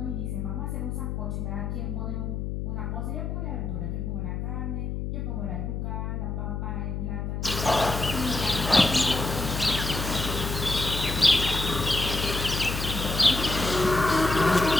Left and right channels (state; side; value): noise; left; hum, 3 dB below the sound